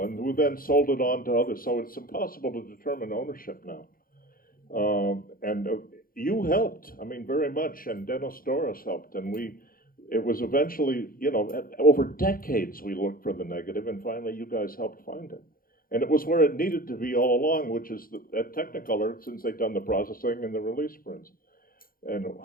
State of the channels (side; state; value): right; late; 0.42 ms